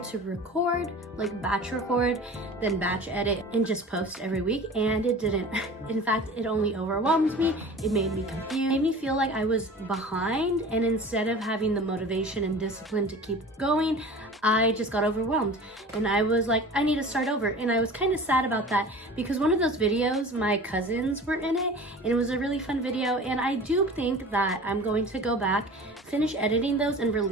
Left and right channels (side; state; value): both; normal; correlation 0.39